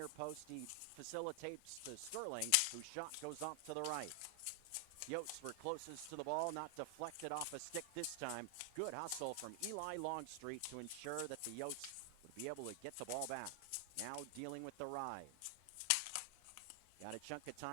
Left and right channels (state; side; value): different; both; correlation 0.00